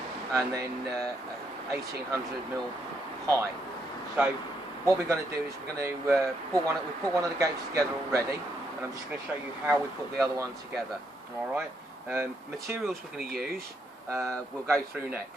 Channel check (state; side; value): normal; both; correlation 0.77